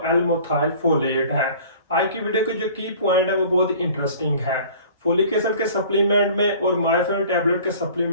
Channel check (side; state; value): both; inverted; correlation -0.47